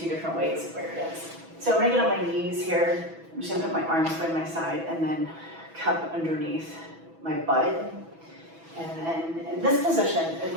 different ways of where it is. So I'm going to get on my knees here. I'm just going to put my arms by my side and then cup underneath my butt. And then in this position,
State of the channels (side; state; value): left; late; 6.1 ms